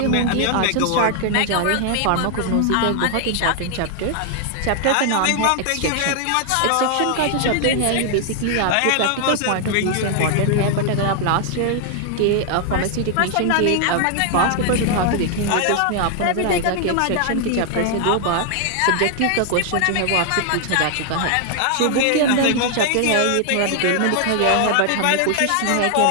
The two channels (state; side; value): different; both; correlation 0.00